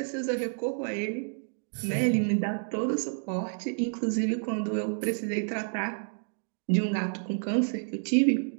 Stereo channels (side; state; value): left; silent; digital silence